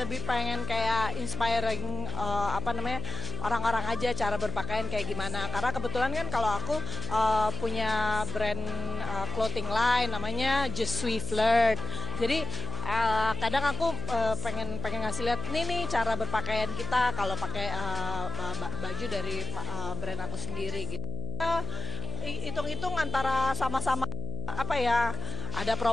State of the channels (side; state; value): left; noise; hum, 5 dB below the sound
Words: pengen kayak inspiring orang-orang aja cara berpakaian kayak gimana. Karena kebetulan kan kalau aku punya brand clothing line namanya Just Sweet Flirt. Jadi kadang aku pengen ngasih lihat nih cara berpakaian kita kalau pakai baju dari brand aku sendiri gitu. Hitung-hitung antara sama-sama ada